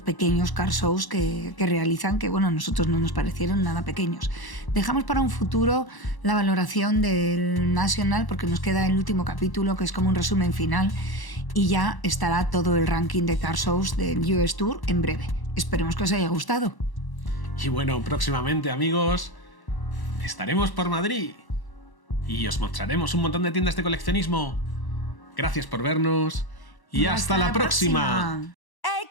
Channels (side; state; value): right; late; 1.1 ms